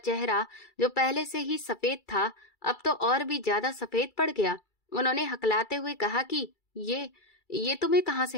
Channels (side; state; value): right; late; 2.3 ms